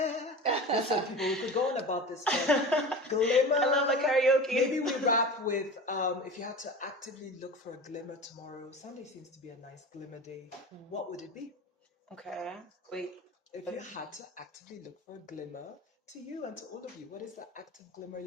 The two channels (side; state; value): both; normal; correlation 0.32